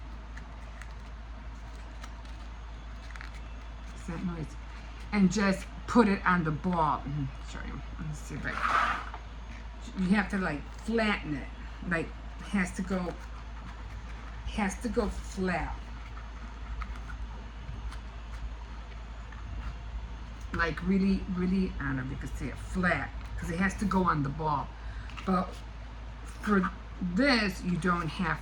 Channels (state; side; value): identical; both; correlation 1.00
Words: What's that noise? And just put it on the ball. Sorry, let me see if you have to like flatten it. Like has to go flat. Like really, really, I don't know if you can see it, flat, because it has to go on the ball. But for this, you don't